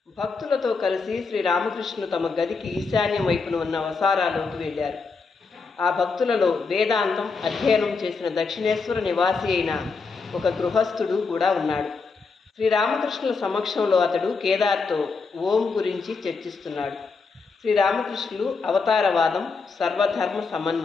భక్తులతో కలిసి శ్రీరామకృష్ణులు తమ గదికి ఈశాన్యం వైపున ఉన్న వసారాలోకి వెళ్ళారు. ఆ భక్తులలో వేదాంతం అధ్యయనం చేసిన దక్షిణేశ్వర నివాసి అయిన ఒక గృహస్థుడు కూడా ఉన్నాడు. శ్రీరామకృష్ణుల సమక్షంలో అతడు కేదార్తో ఓం గురించి చర్చిస్తున్నాడు. శ్రీరామకృష్ణులు అవతారవాదం, సర్వధర్మ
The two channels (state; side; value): quieter; right; 4.6 dB